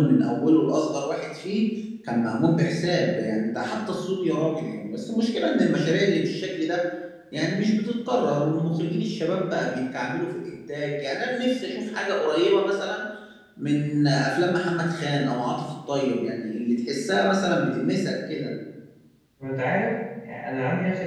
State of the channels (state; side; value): identical; both; correlation 1.00